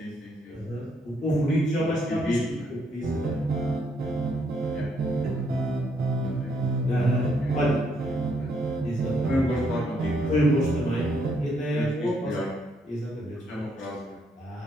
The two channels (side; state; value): both; normal; correlation 0.73